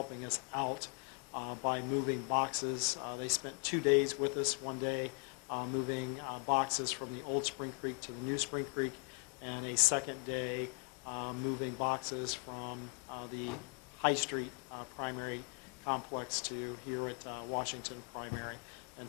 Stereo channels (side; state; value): right; quieter; 38.2 dB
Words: us out by moving boxes. They spent 2 days with us, one day moving boxes from the old Spring Creek to the new Spring Creek, and a second day moving boxes from the High Street primary complex to here at Washington primary. And